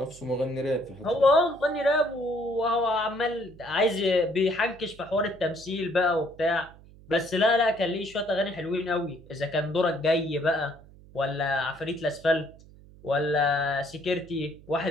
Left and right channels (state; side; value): noise; right; hum, 22 dB below the sound